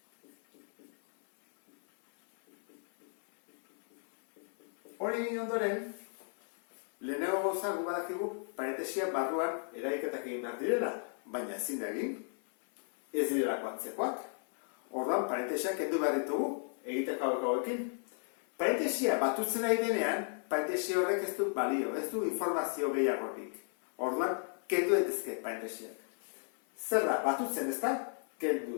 Hori egin ondoren, lehenago gauza gu badakigu parentesia barruan eraiketak egin behar direla, baina ezin da egin, ez direlako antzekoak. Orduan, parentesiak kendu behar ditugu, egiteko hauekin. Parentesia batutzen nahi denean, parentesia horrek ez du balio, ez du informazio gehiagorik. Orduan, kendu daitezke parentesiak. Zer da, batutzen ez da? Kendu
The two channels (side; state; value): right; silent; 54 dB below the other